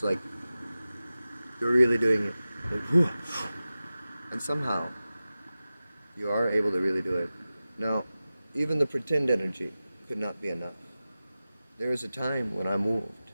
like you're really doing it, like, and somehow you are able to really do it. Now, even the pretend energy could not be enough. There was a time when I moved,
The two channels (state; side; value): inverted; both; correlation -0.95